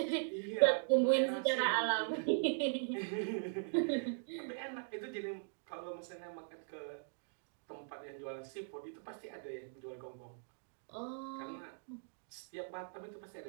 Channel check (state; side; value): silent; left; digital silence